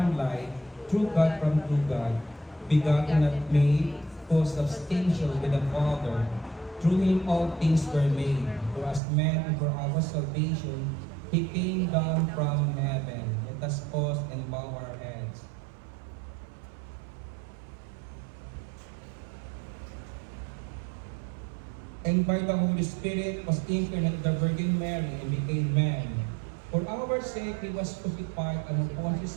light, true God from true God, begotten not made, co-substantial with the Father. Through Him all things were made. For as man and for our salvation, He came down from heaven. Let us pause and bow our heads. And by the Holy Spirit was incarnate the Virgin Mary and became man. For our sake He was crucified under Pontius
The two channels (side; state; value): left; drops out; at 9.0 s